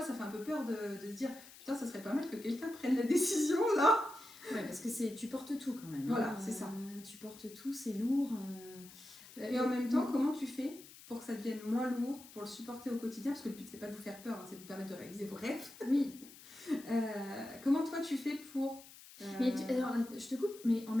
ça fait un peu peur de se dire putain, ça serait pas mal que quelqu'un prenne la décision là. Ouais, parce que tu portes tout quand même. Voilà, c'est ça. Tu portes tout, c'est lourd. Et en même temps, comment tu fais pour que ça devienne moins lourd, pour le supporter au quotidien? Parce que le but c'est pas de vous faire peur, c'est de vous permettre de réaliser vos rêves. Oui. Comment toi tu fais pour... Mais alors, je te coupe, mais en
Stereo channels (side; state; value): left; noise; hiss, 19 dB below the sound